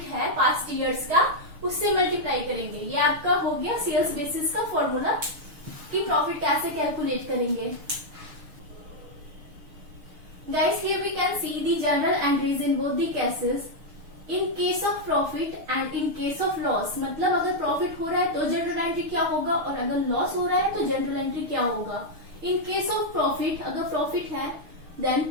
है पास्ट ईयर्स का उससे मल्टीप्लाई करेंगे। ये आपका हो गया सेल्स बेसिस का फॉर्मूला कि प्रॉफिट कैसे कैलकुलेट करेंगे। Guys here we can see the general entries in both the cases, in case of profit and in case of loss. मतलब अगर प्रॉफिट हो रहा है तो जनरल एंट्री क्या होगा और अगर लॉस हो रहा है तो जनरल एंट्री क्या होगा। इन केस ऑफ प्रॉफिट, अगर प्रॉफिट है then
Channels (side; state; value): left; late; 6.5 ms